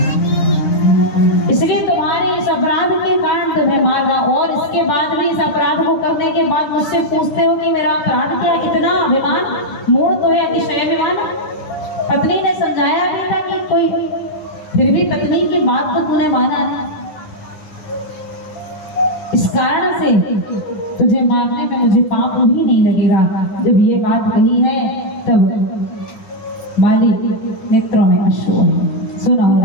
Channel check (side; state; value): right; late; 9.8 ms